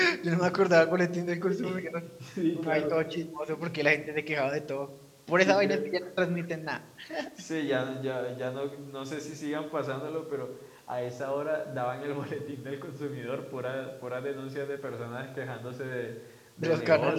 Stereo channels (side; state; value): both; identical; correlation 1.00